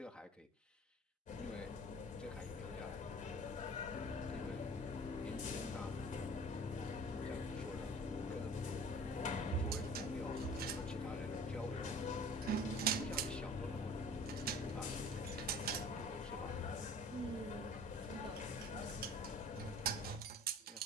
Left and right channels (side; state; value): both; normal; correlation 0.45